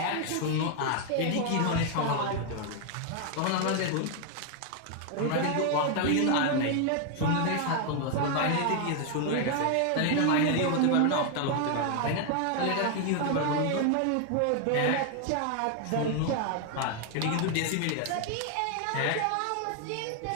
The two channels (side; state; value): both; different; correlation 0.00